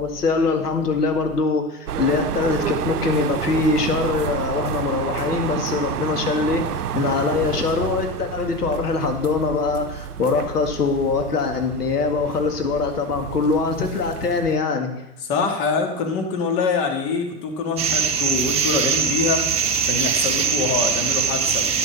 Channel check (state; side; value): normal; both; correlation 0.21